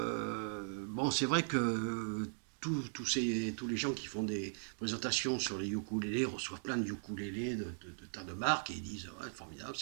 bon, c'est vrai que tous les gens qui font des présentations sur les ukulélés reçoivent plein de ukulélés de tas de marques et ils disent ouais, formidable,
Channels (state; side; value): silent; left; digital silence